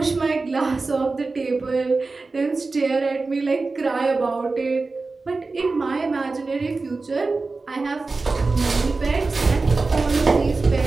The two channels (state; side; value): quieter; left; 3.8 dB